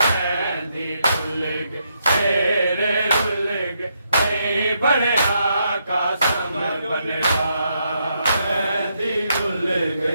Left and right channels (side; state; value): both; inverted; correlation -0.79